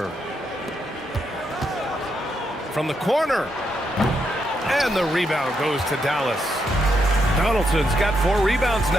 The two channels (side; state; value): both; normal; correlation 0.80